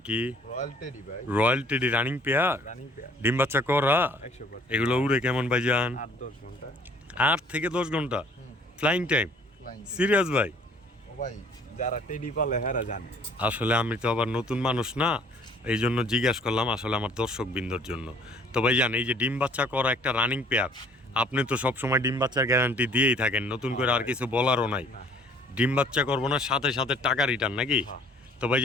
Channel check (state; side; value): normal; both; correlation 0.56